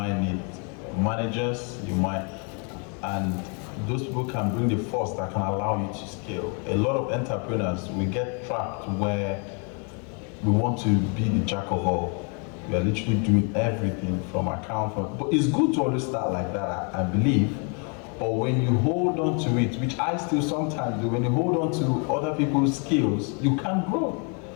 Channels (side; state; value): right; quieter; 37.3 dB